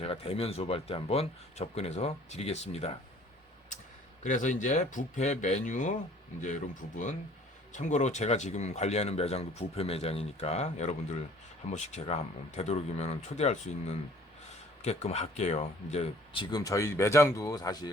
대면 수업할 때 한번 접근해서 드리겠습니다. 그래서 이제 뷔페 메뉴 이제 이런 부분, 참고로 제가 지금 관리하는 매장도 뷔페 매장이니까 여러분들 한 번씩 제가 한번 되도록이면 초대할 수 있는 게끔 할게요. 이제 지금 저희 매장도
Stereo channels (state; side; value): normal; both; correlation 0.54